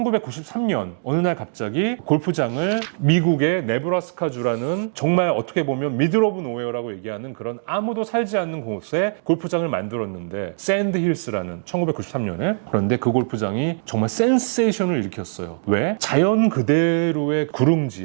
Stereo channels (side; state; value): left; silent; digital silence